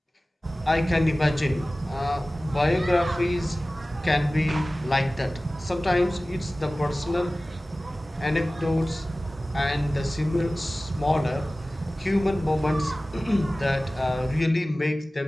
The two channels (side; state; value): both; normal; correlation 0.97